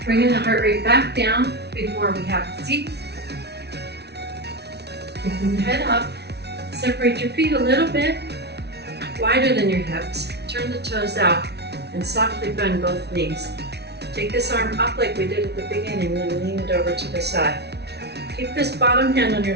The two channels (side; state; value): left; late; 0.49 ms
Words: Bringing the heart rate back down before we have a seat. Keeping the head up. Separate your feet a little bit wider than your hips. Turn the toes out and softly bend both knees. Take this arm up like we did at the beginning, then lean it over to the side. Keep this bottom hand on your